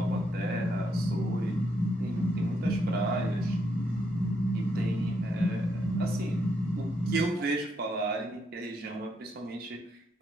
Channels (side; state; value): both; normal; correlation 0.77